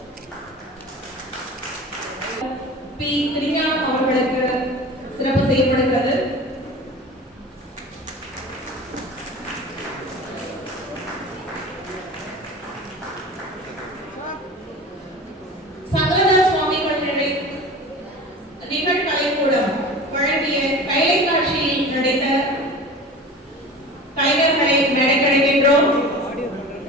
பி. திருஞானம் அவர்களுக்கு சிறப்பு செய்யப்படுகிறது. நிகழ்கலைக்கூடம் வழங்கிய கைலை காட்சியில் நடித்த கலைஞர்களை மேடைக்கழைக்கின்றோம்.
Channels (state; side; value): normal; both; correlation 0.36